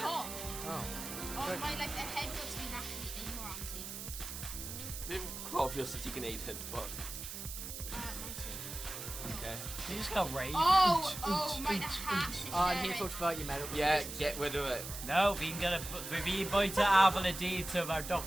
Oh. Oh, my, like, the head gets been actually ignorancy. Being obvious that you can eat it, but Okay. He just got raged. Oh, my, the hat. I need to talk about your medical. yeah, conditions. get rid of it. No, vi kan vi byter ability to our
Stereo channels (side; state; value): right; noise; hiss, 8 dB below the sound